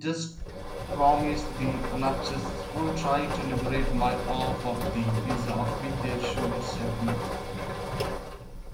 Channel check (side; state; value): both; identical; correlation 1.00